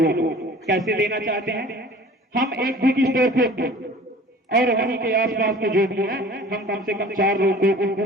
को। कैसे देना चाहते हैं? हम एक बुक स्टोर खोलते और वहीं के आसपास के जो भी हैं हम कम से कम 4 लोगों को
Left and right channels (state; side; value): normal; both; correlation 0.45